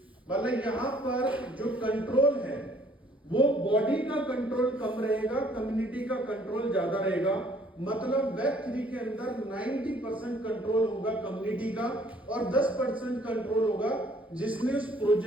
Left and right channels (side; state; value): both; normal; correlation 0.60